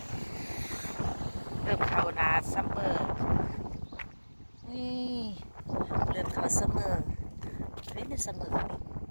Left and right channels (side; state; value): both; inverted; correlation -1.00